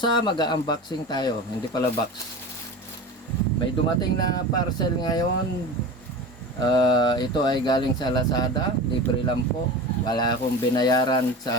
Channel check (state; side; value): normal; both; correlation 0.31